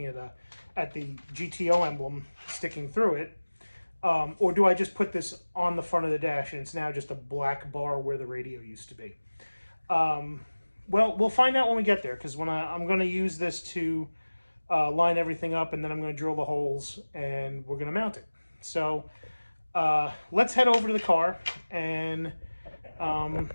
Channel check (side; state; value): both; inverted; correlation -1.00